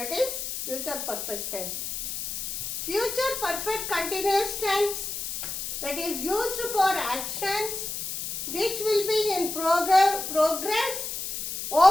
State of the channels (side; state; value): left; noise; hiss, 5 dB below the sound